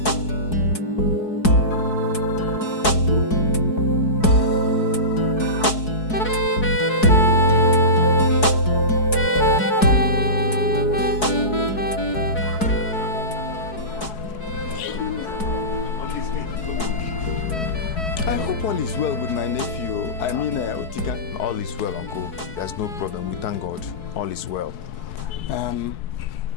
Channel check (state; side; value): late; right; 4.7 ms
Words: I hope all is well with my nephew. I mean, Otika. All is well, Uncle. There's no problem. We thank God. All is well.